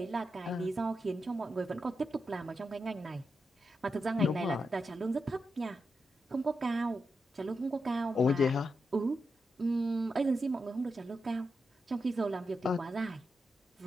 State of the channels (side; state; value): both; normal; correlation 0.86